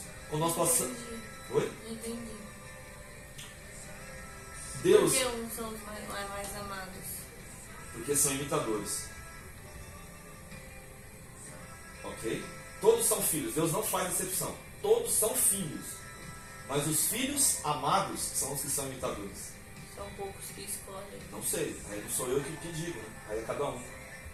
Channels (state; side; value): identical; both; correlation 1.00